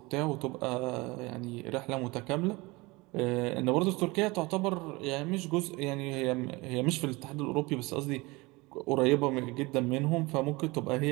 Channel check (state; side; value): quieter; left; 23.6 dB